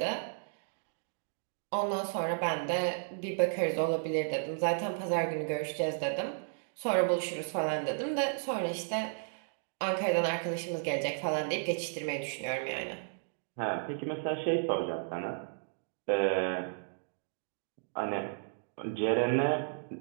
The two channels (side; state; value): left; silent; digital silence